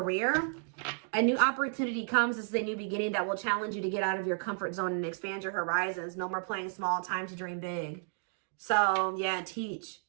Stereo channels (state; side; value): silent; left; 56 dB below the other